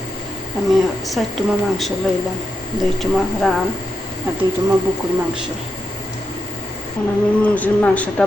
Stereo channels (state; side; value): normal; both; correlation 0.85